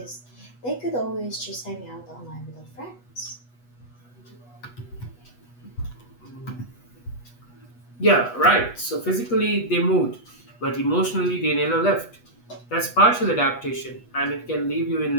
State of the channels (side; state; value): right; late; 8.2 ms